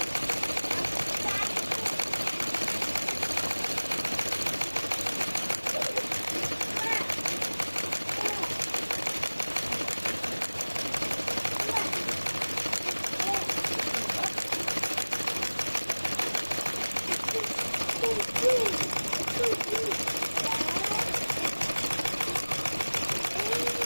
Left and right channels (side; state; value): both; inverted; correlation -1.00